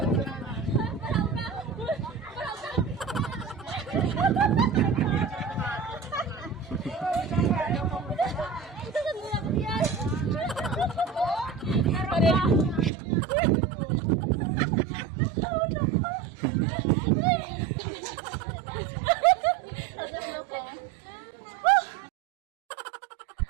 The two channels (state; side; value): drops out; left; at 12.9 s